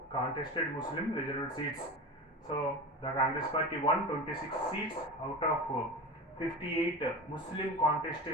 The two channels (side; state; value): both; normal; correlation 0.28